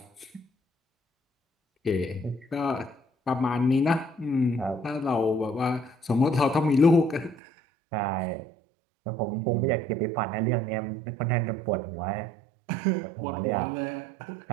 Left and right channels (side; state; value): left; drops out; at 7.4 s